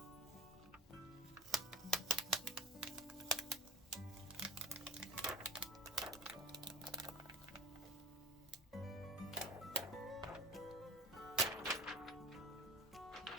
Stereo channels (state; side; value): normal; both; correlation 0.35